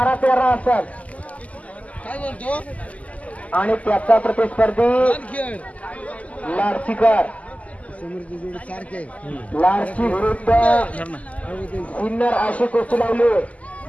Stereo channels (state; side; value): late; right; 0.071 ms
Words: असेल आणि त्याचा प्रतिस्पर्धी लाडशीकर लाडशी विरुद्ध सिन्नर अशी कुस्ती लावली.